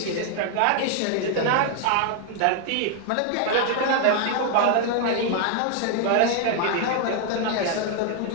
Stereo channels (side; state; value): both; different; correlation 0.00